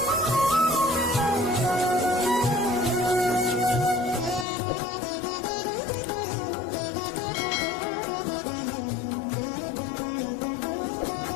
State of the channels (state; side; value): drops out; right; at 4.5 s